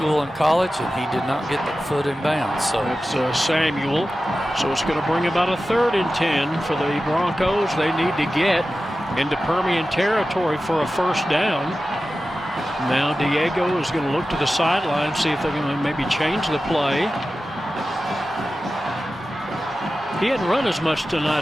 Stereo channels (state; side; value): normal; both; correlation 0.94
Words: and college, and he did not get that foot in bounds. So it's Samuel. So it's going to bring about a 3rd and 10 for the Broncos. They need to get into Permian territory for a first down. Now Diego is going to look to the sideline, see if they're going to maybe change the play. He hadn't run as much